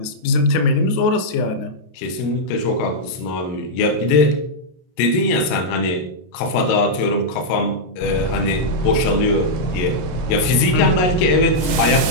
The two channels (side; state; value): right; late; 33 ms